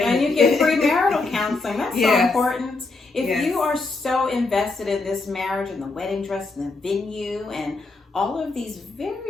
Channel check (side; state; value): right; quieter; 3.6 dB